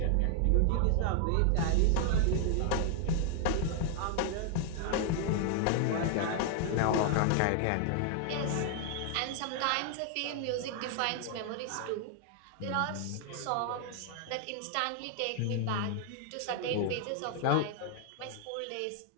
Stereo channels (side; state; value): both; different; correlation 0.00